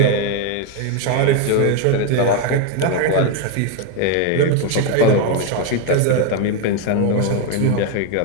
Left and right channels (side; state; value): both; different; correlation 0.02